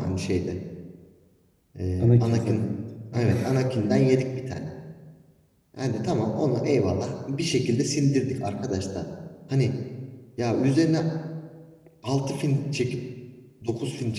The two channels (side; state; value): both; identical; correlation 1.00